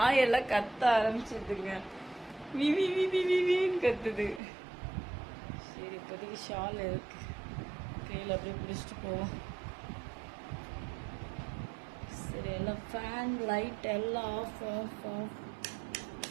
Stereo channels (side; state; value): left; drops out; at 4.4 s